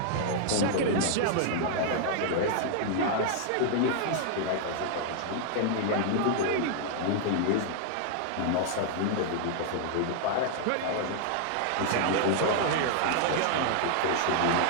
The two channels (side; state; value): both; different; correlation 0.00